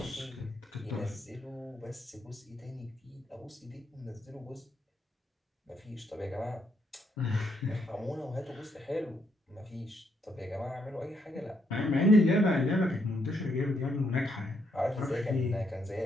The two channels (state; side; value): normal; both; correlation 0.75